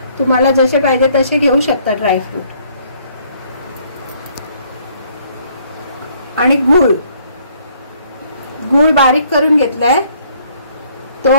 तुम्हाला जसे पाहिजे तसे घेऊ शकता ड्रायफ्रूट। आणि गूळ बारीक करून घेतलाय,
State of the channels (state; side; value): inverted; both; correlation -0.64